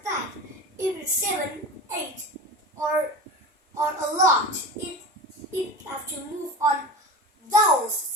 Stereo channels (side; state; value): both; normal; correlation 0.31